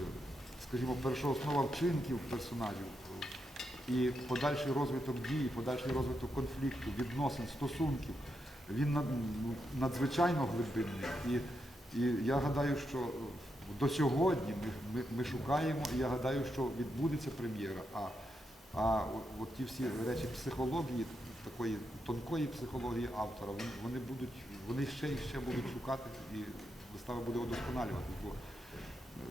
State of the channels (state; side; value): normal; both; correlation 0.84